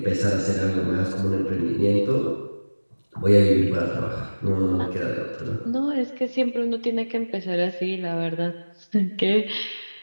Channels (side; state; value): both; inverted; correlation -1.00